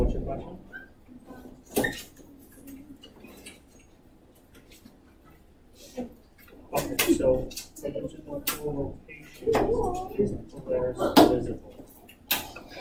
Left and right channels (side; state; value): both; identical; correlation 1.00